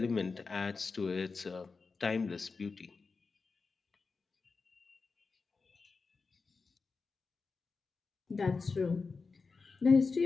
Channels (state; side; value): quieter; right; 4.5 dB